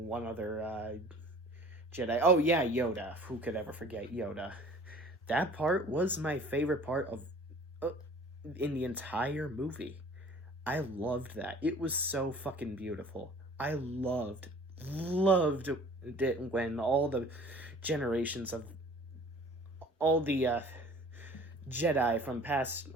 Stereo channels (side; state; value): both; normal; correlation 0.48